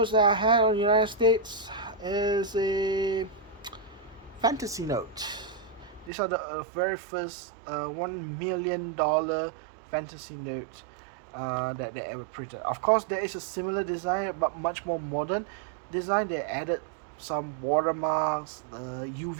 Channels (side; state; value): left; drops out; at 6.1 s